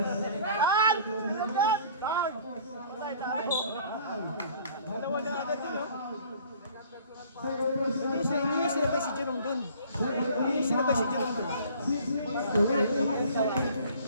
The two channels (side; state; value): both; inverted; correlation -0.52